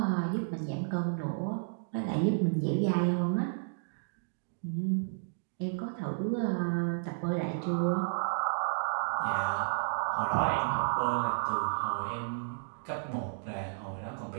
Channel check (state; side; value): silent; left; digital silence